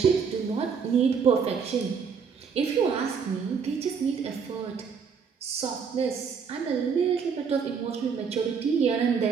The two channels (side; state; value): left; quieter; 6.2 dB